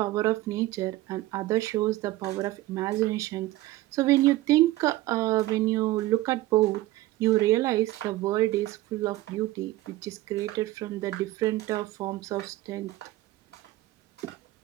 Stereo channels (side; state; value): left; quieter; 17.3 dB